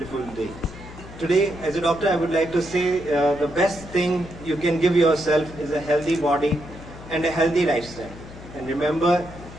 day. Today, as a doctor, I would like to say the best thing you can give yourself is a healthy body and a healthy lifestyle. And remember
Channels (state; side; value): noise; left; hum, 16 dB below the sound